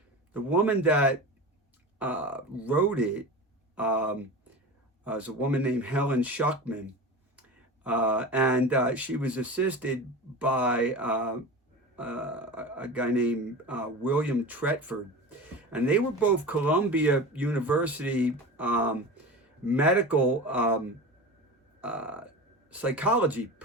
the woman that wrote it was a woman named Helen Schuckman. And she was assisted by a guy named William Tretford. And they were both Columbia University medical psychology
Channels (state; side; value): normal; both; correlation 0.30